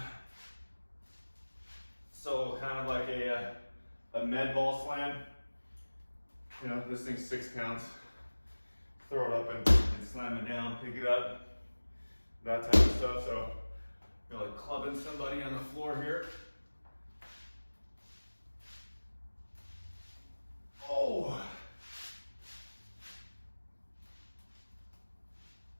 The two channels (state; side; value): inverted; both; correlation -1.00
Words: So kind of like a med ball slam. You know, this thing's 6 pounds. Throw it up and slam it down, pick it up. That type of stuff. So you're like clubbing somebody on the floor here. Oh.